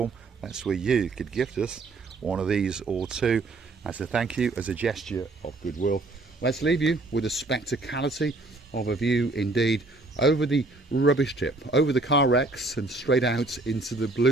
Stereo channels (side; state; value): left; quieter; 3.2 dB